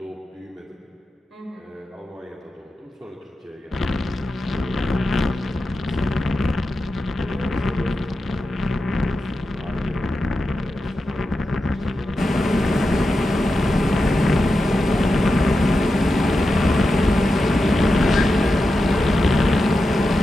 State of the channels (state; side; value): normal; both; correlation 0.90